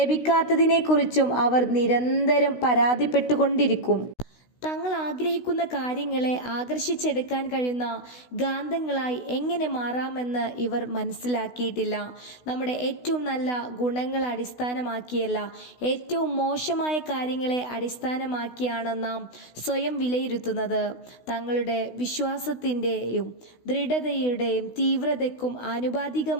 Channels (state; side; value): late; right; 16 ms